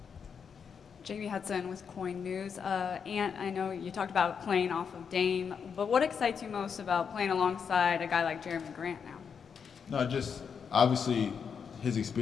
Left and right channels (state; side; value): quieter; right; 6.6 dB